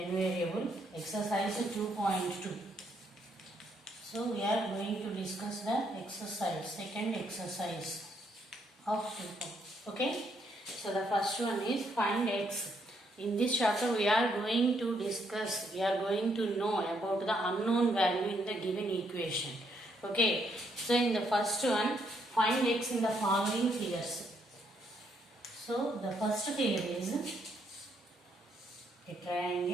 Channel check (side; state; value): both; normal; correlation 0.73